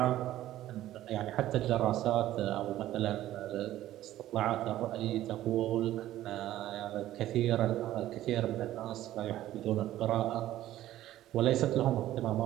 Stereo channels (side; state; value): left; quieter; 13.9 dB